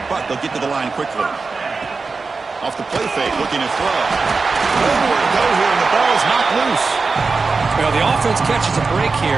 but they'll get to the line quickly. Off the play fake, looking to throw. Nowhere to go here, and the ball is knocked loose. Well, the offense catches a break here.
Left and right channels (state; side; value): quieter; left; 4.3 dB